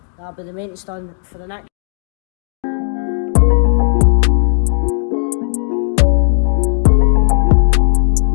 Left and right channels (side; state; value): right; silent; digital silence